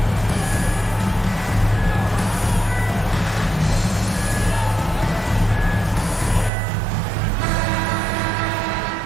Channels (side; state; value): left; drops out; at 6.5 s